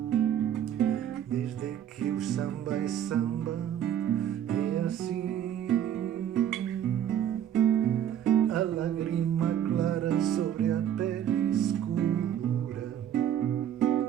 desde que o samba é samba, é assim. A lágrima clara sobre a pele escura,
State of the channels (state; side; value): quieter; left; 10.1 dB